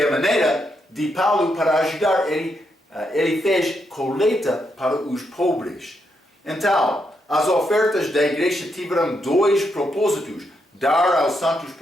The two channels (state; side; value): normal; both; correlation 0.80